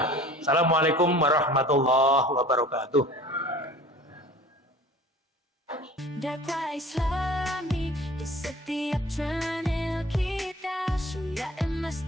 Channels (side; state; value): both; normal; correlation 0.44